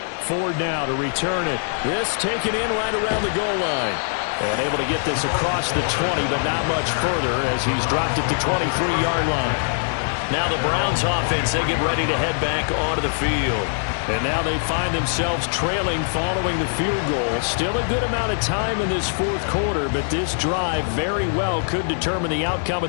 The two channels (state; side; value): silent; right; digital silence